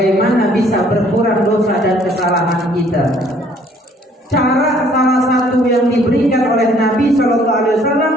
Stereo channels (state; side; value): normal; both; correlation 0.60